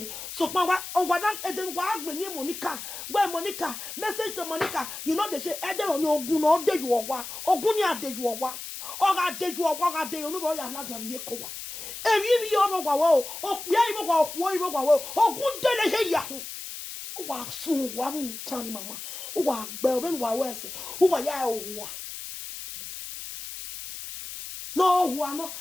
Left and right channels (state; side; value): noise; left; hiss, 9 dB below the sound